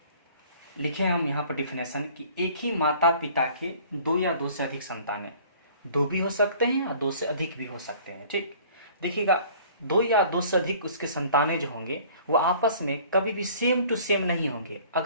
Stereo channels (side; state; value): both; inverted; correlation -0.51